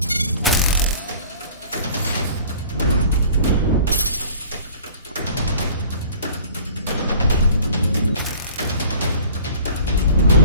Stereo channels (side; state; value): both; inverted; correlation -0.48